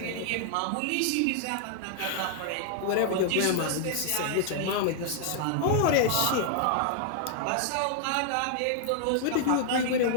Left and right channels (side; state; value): both; different; correlation -0.01